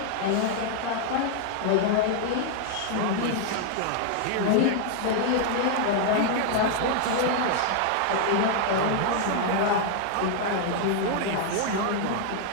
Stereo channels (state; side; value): different; both; correlation 0.00